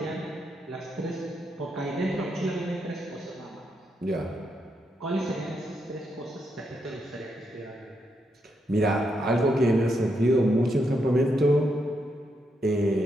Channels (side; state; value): both; normal; correlation 0.81